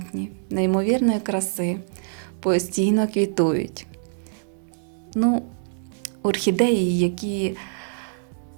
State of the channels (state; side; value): silent; left; digital silence